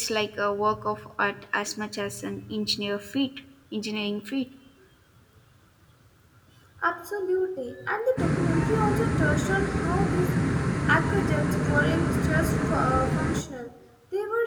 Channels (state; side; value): identical; both; correlation 1.00